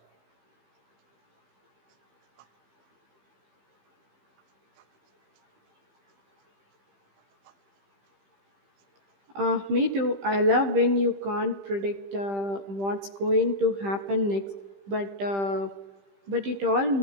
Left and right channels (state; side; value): late; left; 15 ms